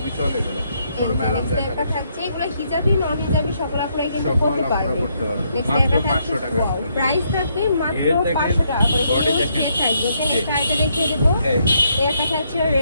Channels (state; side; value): inverted; both; correlation -0.74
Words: চলে এগুলো। একটা থাকছে এগুলো হিজাবি নন হিজাবি সকল আপনারা কিন্তু পড়তে পারবেন। নেক্সট একটা থাকছে ওয়াও, প্রাইস থাকবে মাত্র 500 টাকা করে। সেট থাকবে এখানে কাইটা দেখিয়ে দেব। এই একটা থাকছে